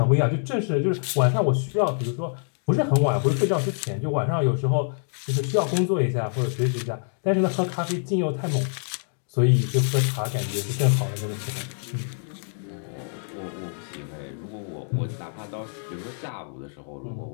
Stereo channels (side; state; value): right; silent; digital silence